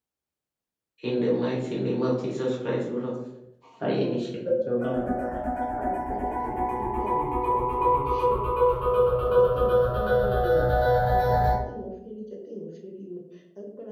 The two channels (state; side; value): identical; both; correlation 1.00